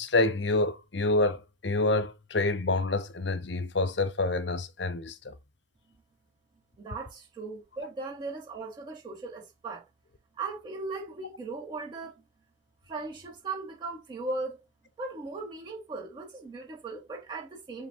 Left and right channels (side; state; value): both; normal; correlation -0.01